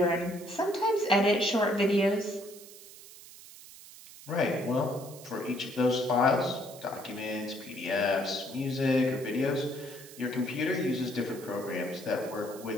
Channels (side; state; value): right; noise; hiss, 18 dB below the sound